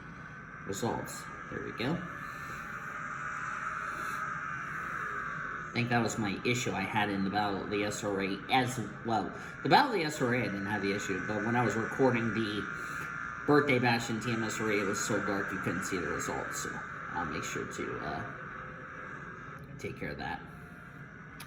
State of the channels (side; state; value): both; identical; correlation 1.00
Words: results. There we go. I think that was my issue I had in the Battle of the SRA as well. The Battle of the SRA, I didn't have the issue, but when I was recording the Birthday Bash in TMSRA, it was so dark you couldn't see the results, so I'll make sure to take care of that.